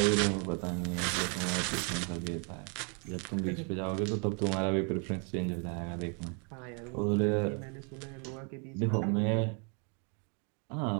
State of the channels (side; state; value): left; quieter; 37.3 dB